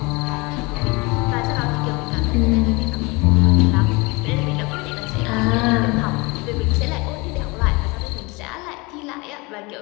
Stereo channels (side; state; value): right; quieter; 25.9 dB